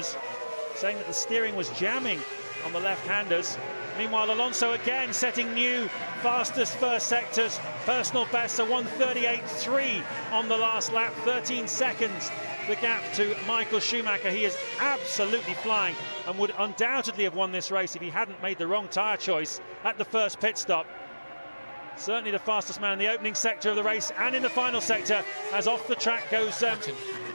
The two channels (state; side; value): inverted; both; correlation -1.00